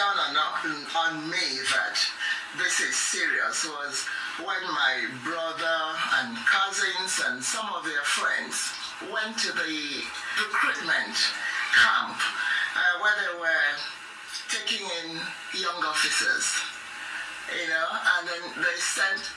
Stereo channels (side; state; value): both; identical; correlation 1.00